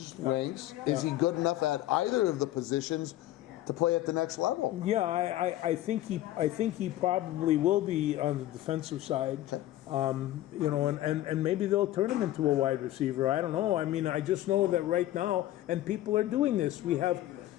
ranks, is he good enough at either of the positions to play at the next level? Yeah, I think he probably will be on the defensive side. And maybe they'll turn him into a wide receiver. I don't know. I mean, I just know that right now, and people are doing this. We have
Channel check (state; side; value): quieter; right; 14.5 dB